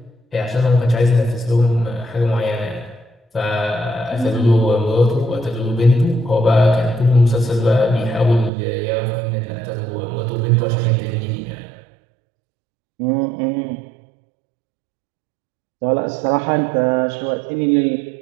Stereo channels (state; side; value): drops out; left; at 8.5 s